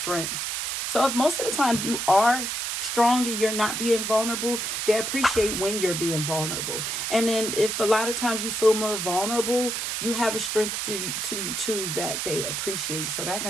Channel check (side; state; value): right; noise; hiss, 2 dB below the sound